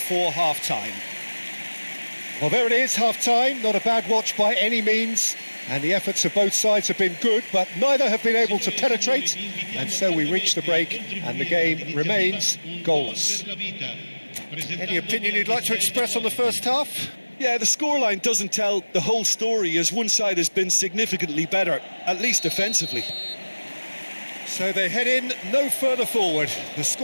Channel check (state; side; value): inverted; both; correlation -1.00